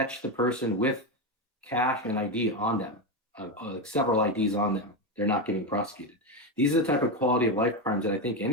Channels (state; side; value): normal; both; correlation 0.12